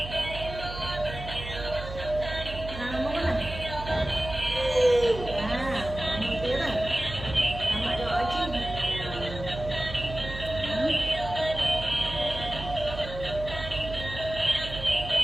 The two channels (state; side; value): noise; right; hum, 9 dB below the sound